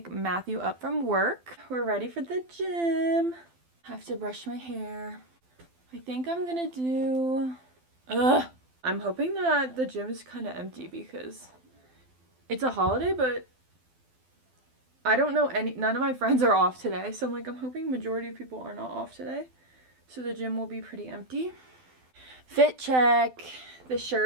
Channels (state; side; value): late; left; 12 ms